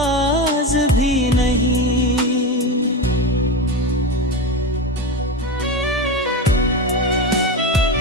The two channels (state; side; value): normal; both; correlation 0.19